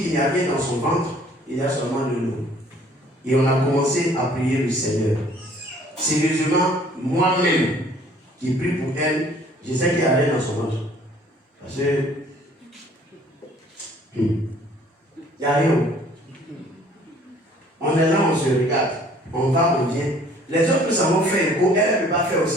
n'y a rien dans son ventre, il y a seulement de l'eau. Et on a commencé à prier le Seigneur. Sérieusement, moi-même, qui prie pour elle, je sais qu'il n'y a rien dans son ventre. Parce que il n'y a rien. On est là, on se regarde. On va, on vient. Les autres, nous avons fait écho. Elle ne peut pas faire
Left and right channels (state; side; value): normal; both; correlation 0.56